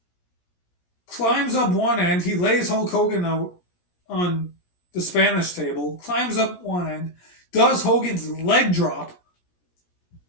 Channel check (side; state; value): right; late; 17 ms